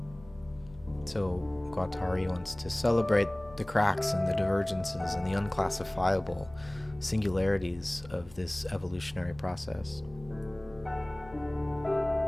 So Guattari wants to celebrate the cracks and the divergences and the unclassifiable singularities of this evolutionary process.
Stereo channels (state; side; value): noise; left; hum, 22 dB below the sound